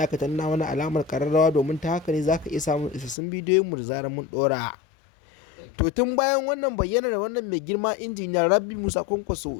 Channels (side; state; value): right; drops out; at 3.2 s